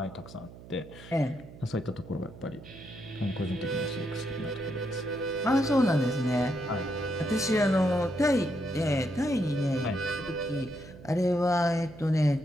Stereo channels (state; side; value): noise; right; hum, 17 dB below the sound